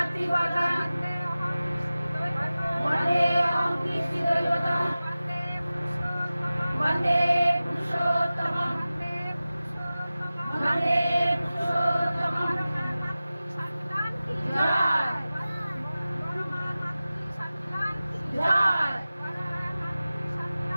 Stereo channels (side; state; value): both; inverted; correlation -0.96